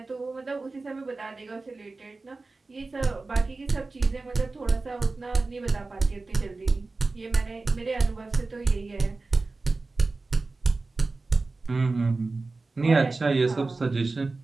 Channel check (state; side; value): quieter; left; 3.6 dB